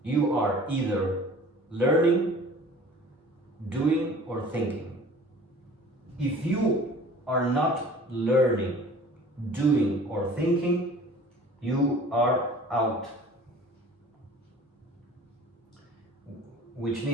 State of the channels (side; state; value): both; normal; correlation 0.46